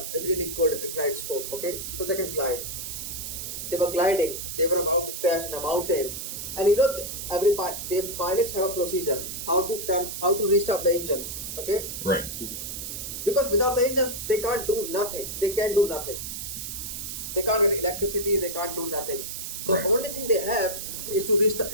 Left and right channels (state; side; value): noise; right; hiss, 6 dB below the sound